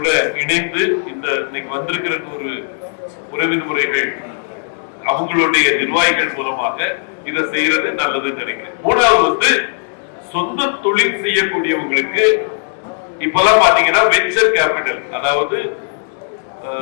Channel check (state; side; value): silent; right; digital silence